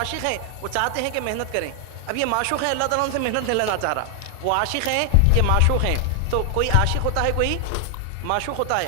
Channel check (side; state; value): both; different; correlation 0.00